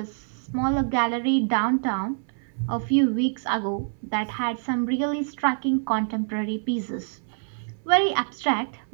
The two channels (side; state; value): left; silent; 59 dB below the other